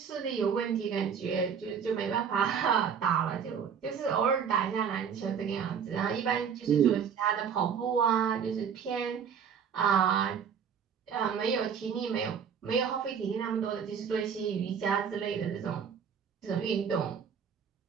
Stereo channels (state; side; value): quieter; left; 7.3 dB